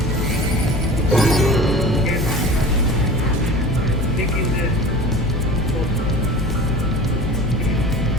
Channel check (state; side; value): normal; both; correlation 0.38